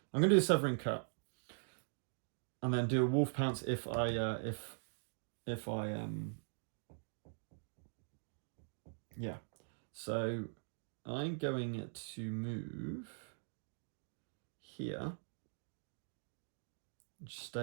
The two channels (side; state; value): left; silent; digital silence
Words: going to do a Severing Cut. And then do a Wolf Pounce if I yeah. So I'm going to move here,